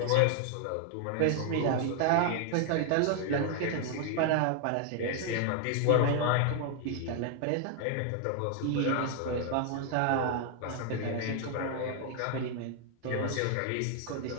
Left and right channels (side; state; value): both; different; correlation 0.00